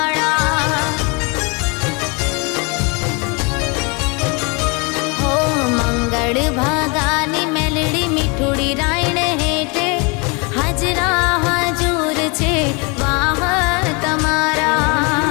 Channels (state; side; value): quieter; right; 30.7 dB